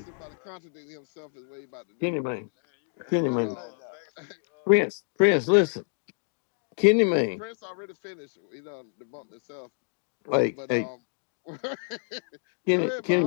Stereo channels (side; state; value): right; silent; digital silence